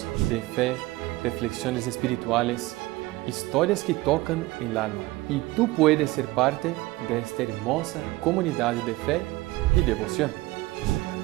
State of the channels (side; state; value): left; quieter; 19.5 dB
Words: de fe, reflexiones espirituales, historias que tocan el alma. Y tú puedes ser parte de esta hermosa comunidad de fe y devoción.